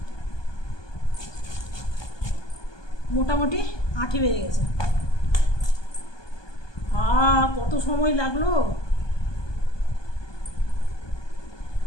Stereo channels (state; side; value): late; right; 1.2 ms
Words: মোটামুটি আঠি বেড়ে গেছে। কত সময় লাগলো